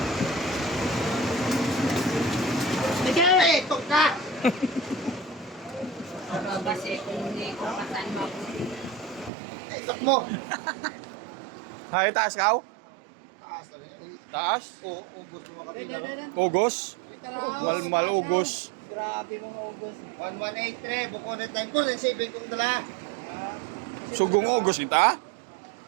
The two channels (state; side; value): drops out; left; at 9.3 s